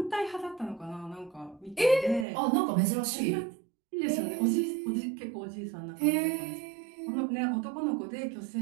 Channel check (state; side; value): drops out; left; at 2.2 s